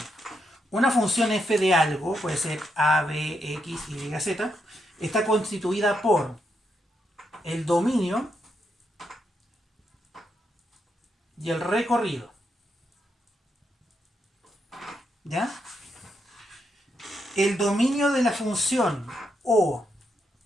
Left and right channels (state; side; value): normal; both; correlation 0.81